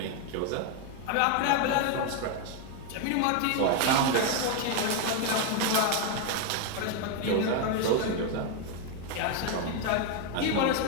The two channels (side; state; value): both; different; correlation 0.01